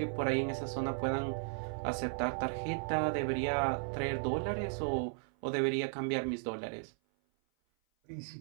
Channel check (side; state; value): left; silent; 54 dB below the other